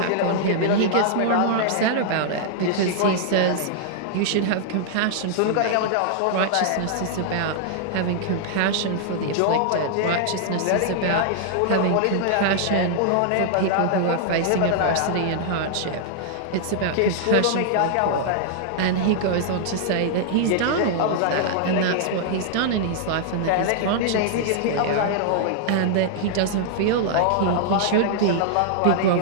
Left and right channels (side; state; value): both; different; correlation -0.01